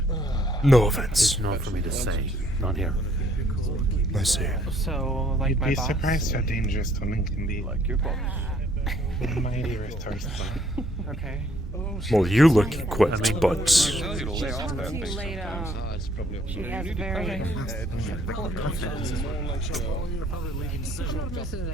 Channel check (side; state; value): both; normal; correlation 0.65